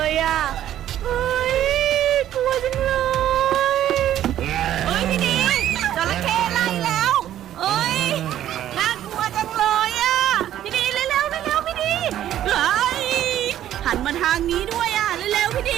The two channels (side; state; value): left; quieter; 11.9 dB